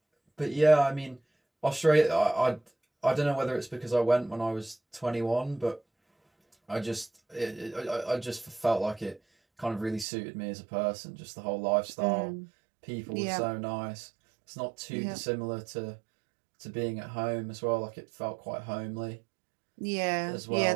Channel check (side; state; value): left; drops out; at 10.1 s